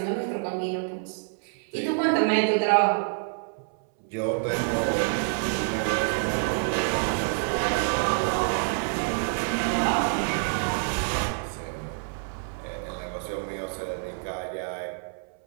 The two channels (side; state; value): left; silent; 60 dB below the other